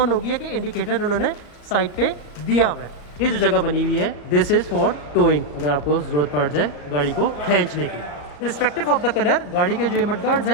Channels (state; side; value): late; right; 34 ms